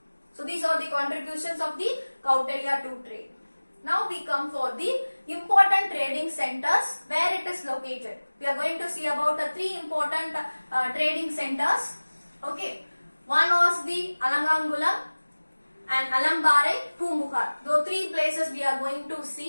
So these are the contributions of the Kautilya to trade. Now we come for the important trading centers where it is located. We are going to see about the three important trading centers. Okay. One was the Alangangulam and Alambare, Pumbuhar. Those three places we are going to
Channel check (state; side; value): inverted; both; correlation -1.00